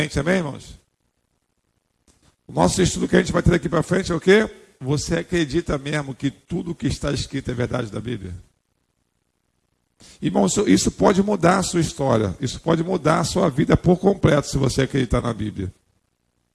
amém, irmãos? O nosso estudo que a gente vai ter daqui para frente é o quê? Você acredita mesmo que tudo que está escrito é verdade da Bíblia? Irmão, isso pode mudar a sua história. Isso pode mudar a sua vida por completo, se você acreditar na Bíblia.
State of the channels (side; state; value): both; identical; correlation 1.00